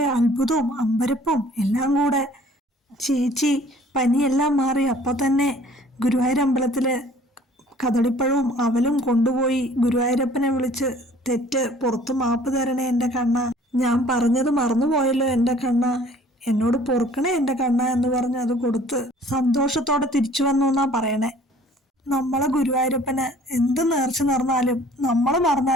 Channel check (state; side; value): normal; both; correlation 0.54